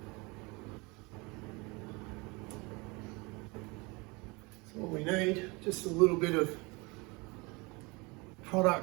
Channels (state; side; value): quieter; left; 26.7 dB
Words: All we need, just a little bit of